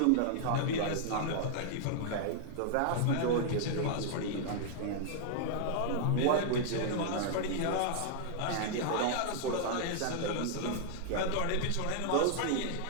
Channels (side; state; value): both; different; correlation -0.01